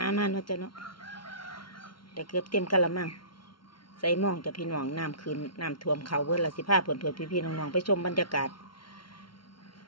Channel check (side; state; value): right; late; 0.73 ms